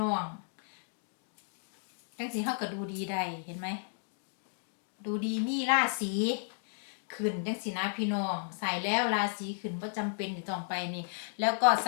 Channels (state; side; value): silent; right; digital silence